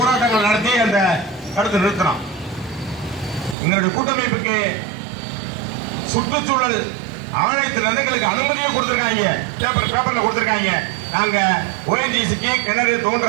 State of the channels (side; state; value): left; drops out; at 3.6 s